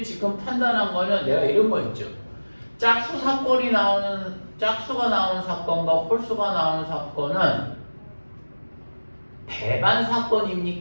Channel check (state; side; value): inverted; both; correlation -1.00